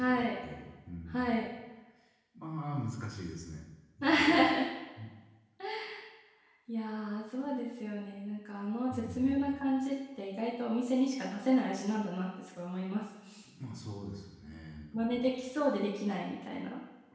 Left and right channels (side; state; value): both; identical; correlation 1.00